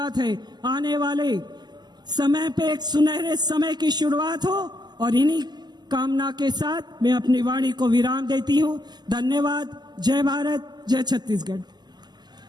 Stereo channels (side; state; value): left; late; 0.21 ms